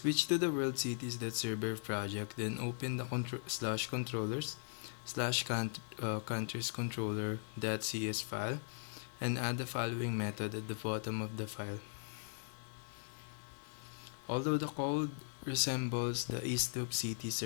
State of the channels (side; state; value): right; silent; digital silence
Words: to the world cities.server project, then open the /controllers/countries controller.cs file and add the following method at the bottom of the file. Although the code resembles the ISDUP-CT